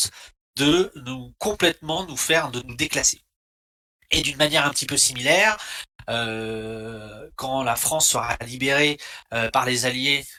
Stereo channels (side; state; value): both; identical; correlation 1.00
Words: de de nous déclasser. Et d'une manière un petit peu similaire, quand la France sera libérée par les Alliés,